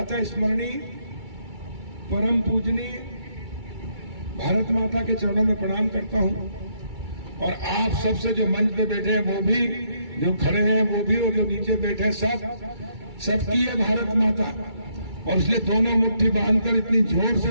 स्मरणीय परम पूजनीय भारत माता के चरणों में प्रणाम करता हूं और आप सबसे जो मंच पे बैठे हैं वो भी, जो खड़े हैं वो भी और जो नीचे बैठे हैं सबकी है भारत माता। और इसलिए दोनों मुट्ठी बांधकर इतनी जोर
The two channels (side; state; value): left; late; 2.3 ms